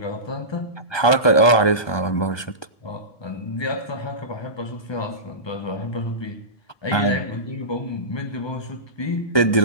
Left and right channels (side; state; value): right; late; 1.2 ms